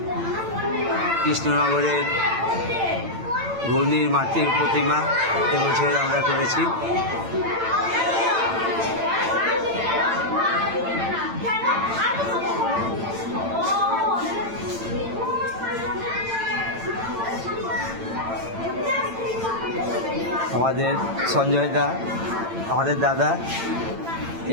কৃষ্ণনগরের ঘূর্ণির মাতৃর প্রতিমা এবছর আমরা করেছি। আমাদের সঞ্জয় দা, আমাদের দাদা,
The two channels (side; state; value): left; late; 8.9 ms